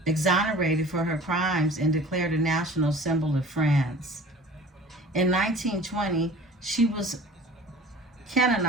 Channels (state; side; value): normal; both; correlation 0.44